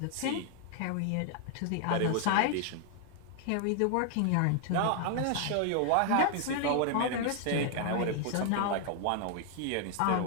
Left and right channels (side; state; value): both; different; correlation 0.00